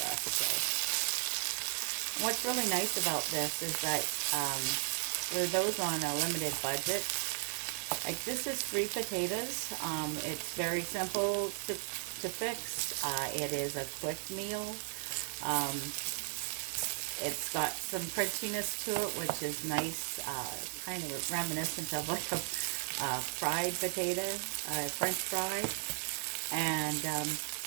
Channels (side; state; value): left; silent; 54 dB below the other